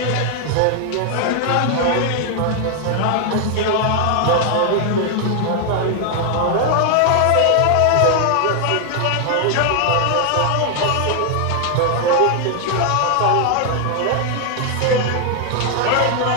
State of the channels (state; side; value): different; both; correlation 0.00